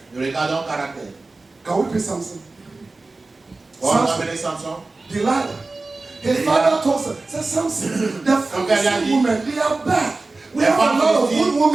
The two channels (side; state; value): left; quieter; 3.4 dB